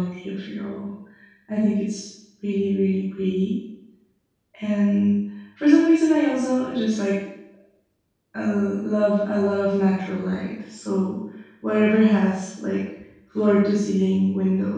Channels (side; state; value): both; identical; correlation 1.00